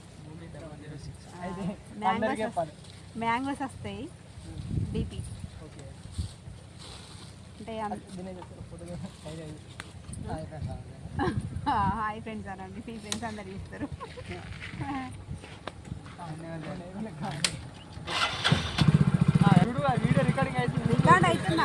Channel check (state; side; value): identical; both; correlation 1.00